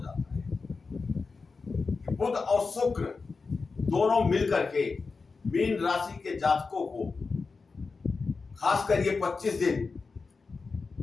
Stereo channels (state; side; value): quieter; right; 4.4 dB